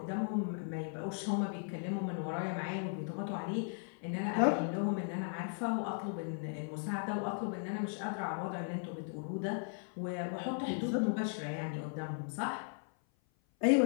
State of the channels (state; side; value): silent; right; 53 dB below the other